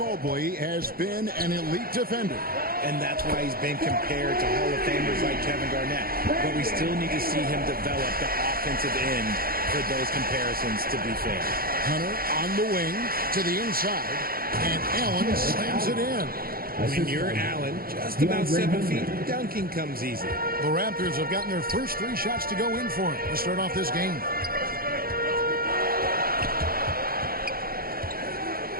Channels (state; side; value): late; left; 0.43 ms